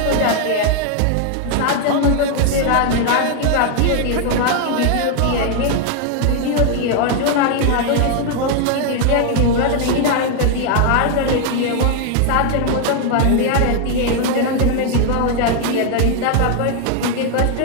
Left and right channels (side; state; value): both; different; correlation 0.00